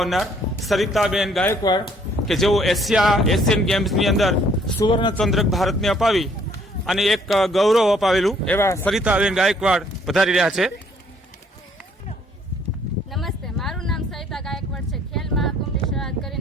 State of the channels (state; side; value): normal; both; correlation 0.63